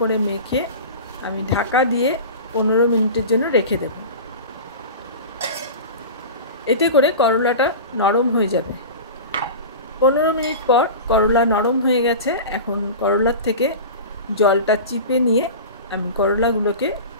মেখে আমি ঢাকা দিয়ে 15 মিনিটের জন্য রেখে দেব। এতে করে করলাটা নরম হয়ে যাবে। 15 মিনিট পর করলা নরম হয়ে গেছে। এখন করলার থেকে জলটা চিপে নিয়ে আমি করলাগুলোকে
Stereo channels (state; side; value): inverted; both; correlation -0.31